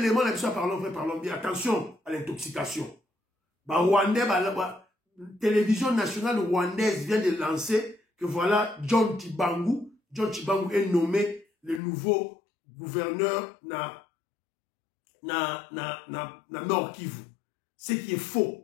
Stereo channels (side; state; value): right; drops out; at 11.8 s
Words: la mission parlons vrai, parlons bien. Attention à l'intoxication. Rwandais, télévision nationale rwandaise vient de lancer que voilà, John Chibangu est nommé le nouveau gouverneur na Nord Kivu. Ce qui est